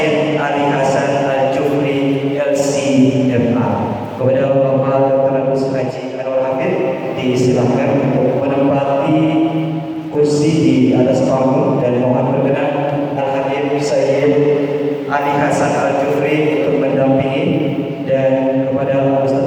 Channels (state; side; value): identical; both; correlation 1.00